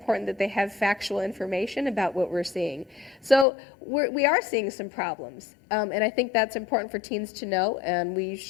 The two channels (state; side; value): drops out; right; at 3.5 s